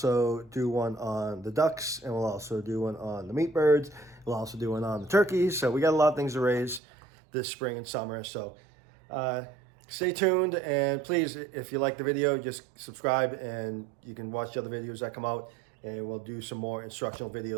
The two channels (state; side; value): drops out; left; at 6.8 s